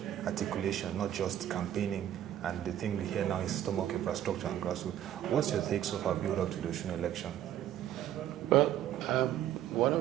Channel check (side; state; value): left; quieter; 11.6 dB